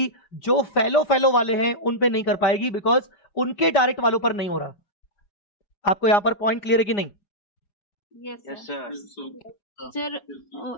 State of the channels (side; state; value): right; late; 5.0 ms